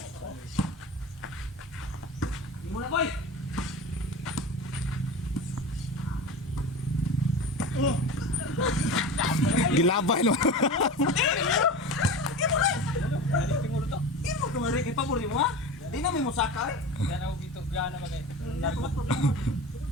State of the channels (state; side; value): normal; both; correlation 0.31